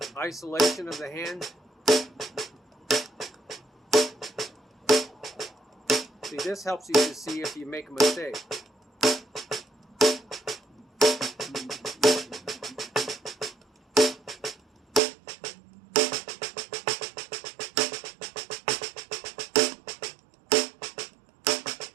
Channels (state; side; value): drops out; left; at 15.0 s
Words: isolation of the hand. See, this helps you to see if you make a mistake.